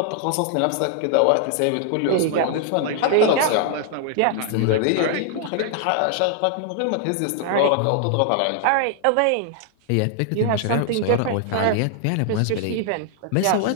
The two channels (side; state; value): both; different; correlation 0.00